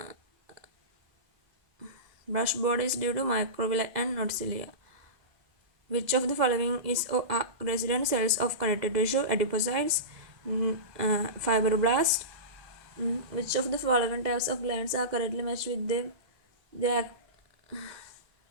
Brush body is due to microvilli and not cilia. Which of the following is resident cells of connective tissue? Adipocytes, fibroblasts. Which of the following types of glands are correctly matched with their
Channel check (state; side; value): late; left; 2.0 ms